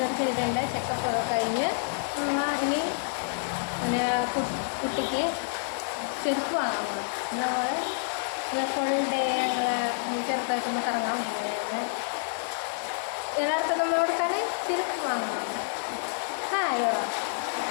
ചെയ്തിട്ടുണ്ട്. ചെക്കപ്പ് ഒക്കെ കഴിഞ്ഞ് ഇനി പിന്നെ കുട്ടിക്ക് ചെരുപ്പ് വാങ്ങാൻ പോകണം. നമ്മൾ ഫുൾ ഡേ ഞങ്ങൾ ചെറുതായിട്ടൊന്ന് കറങ്ങാൻ പോകുന്നത്. എല്ലാവർക്കും നമ്മളോട് തന്നെ ചെരുപ്പ് വാങ്ങണം. Hi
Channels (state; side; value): silent; right; 59 dB below the other